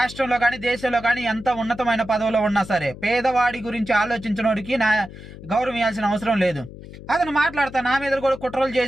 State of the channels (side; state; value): left; noise; hum, 15 dB below the sound